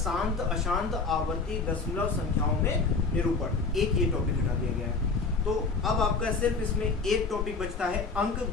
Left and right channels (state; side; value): quieter; right; 4.2 dB